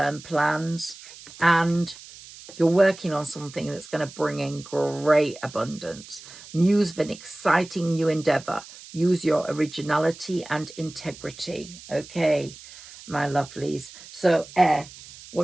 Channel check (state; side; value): noise; right; hiss, 18 dB below the sound